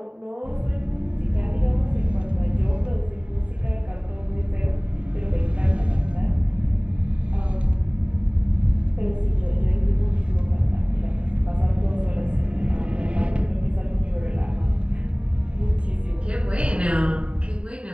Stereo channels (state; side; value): late; left; 0.059 ms